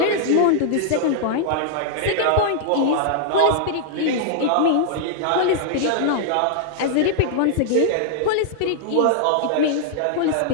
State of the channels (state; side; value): different; both; correlation -0.01